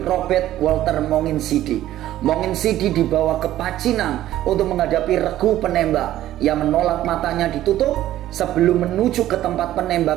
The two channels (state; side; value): quieter; left; 13.5 dB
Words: Walter Mongin Sidi. Mongin Sidi dibawa ke Pacinan untuk menghadapi regu penembak. Ia menolak matanya ditutup. Sebelum menuju ke tempat